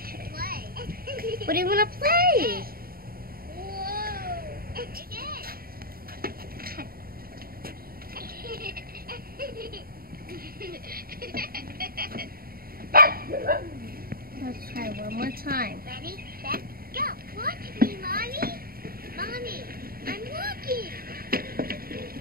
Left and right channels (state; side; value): late; left; 0.43 ms